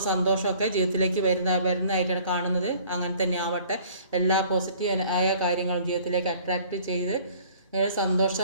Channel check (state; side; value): inverted; both; correlation -0.53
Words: സന്തോഷമൊക്കെ ജീവിതത്തിലേക്ക് വരുന്നതായിട്ടാണ് കാണുന്നത്. അങ്ങനെ തന്നെ ആവട്ടെ. എല്ലാ പോസിറ്റീവ് ആയ കാര്യങ്ങളും ജീവിതത്തിലേക്ക് അട്രാക്റ്റ് ചെയ്ത്